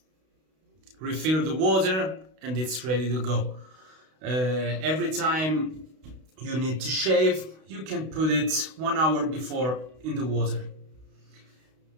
refill the water, and it's ready to go. Every time you need to shave, you can put it 1 hour before in the water,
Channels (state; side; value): late; left; 32 ms